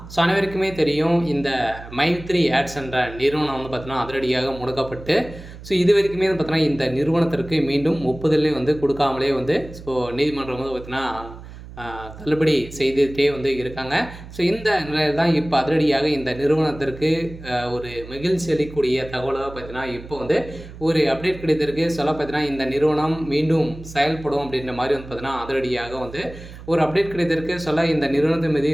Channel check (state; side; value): noise; right; hum, 15 dB below the sound